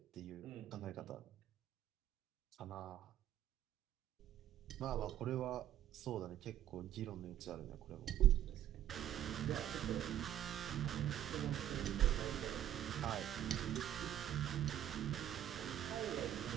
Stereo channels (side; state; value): left; quieter; 11.5 dB